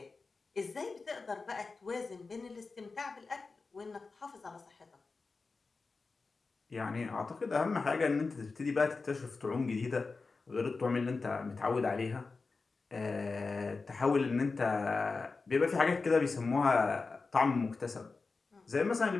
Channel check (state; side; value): quieter; right; 4.1 dB